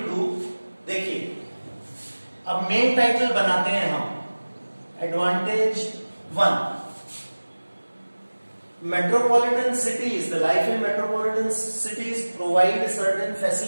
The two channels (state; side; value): inverted; both; correlation -1.00